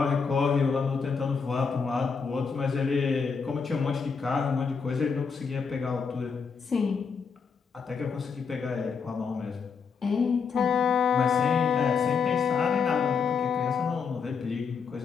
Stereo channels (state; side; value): quieter; right; 5.8 dB